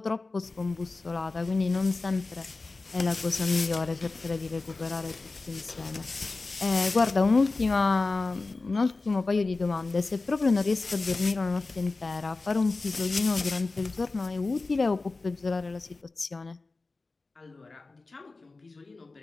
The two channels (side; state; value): right; quieter; 3.6 dB